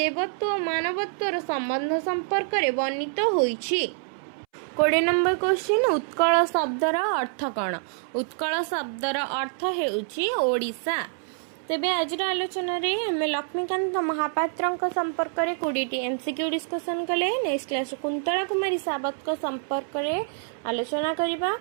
और मानवत्वर संबंध संपर्क रे वर्णित होइछि। 20 नंबर क्वेश्चन उत्कल शब्दर अर्थ कौन? उत्कल शब्दर अर्थ हेउछि ओडिशा। तेबे आज आलोचन रे हमें लक्ष्मीकांत महापात्र संपर्क में 20 एमसीक्यू डिस्कसन कले। नेक्स्ट क्लास कुंतला कुमारी सावत संपर्क में आलोचना करिबा।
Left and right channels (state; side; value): silent; left; 61 dB below the other